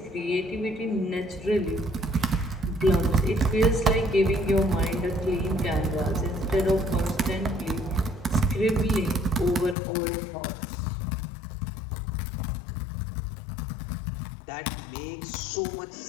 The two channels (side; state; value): right; drops out; at 9.8 s